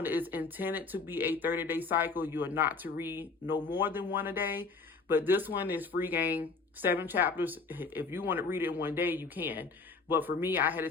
is intended to be a 30-day cycle. You are not to read no more than 1 a day. But this one is free game, 7 chapters. If you want to read it in 1 day, you can. But for me, I had to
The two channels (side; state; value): right; quieter; 4.3 dB